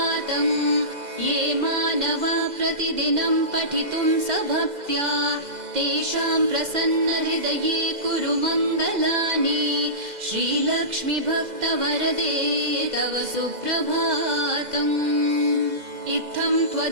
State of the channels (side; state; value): left; late; 2.0 ms